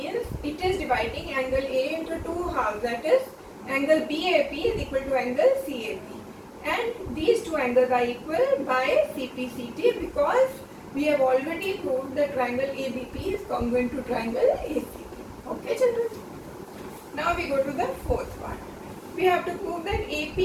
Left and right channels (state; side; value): identical; both; correlation 1.00